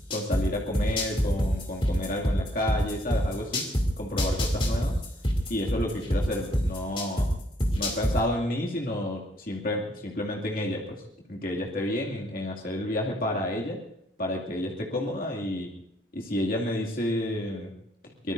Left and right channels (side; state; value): both; normal; correlation 0.67